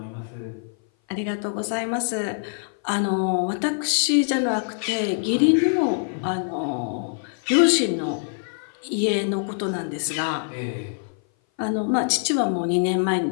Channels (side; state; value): right; silent; 57 dB below the other